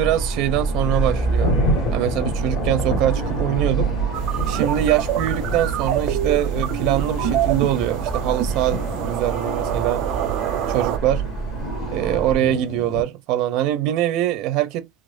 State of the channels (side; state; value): left; quieter; 7.3 dB